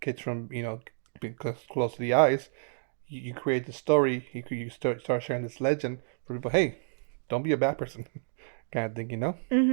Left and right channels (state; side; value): silent; left; digital silence